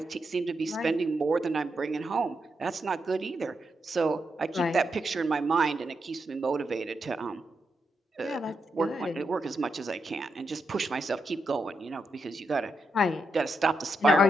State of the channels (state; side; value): normal; both; correlation 0.84